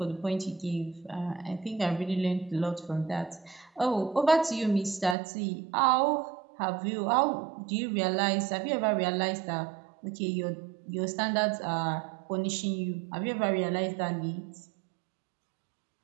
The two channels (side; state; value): left; drops out; at 5.2 s